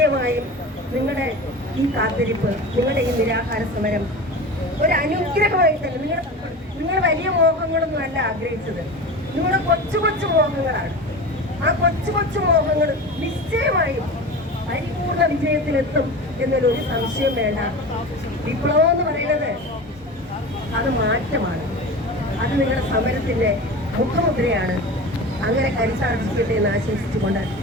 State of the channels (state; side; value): normal; both; correlation 0.31